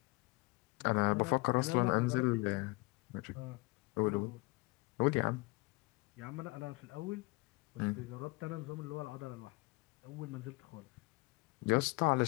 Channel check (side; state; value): right; quieter; 24.2 dB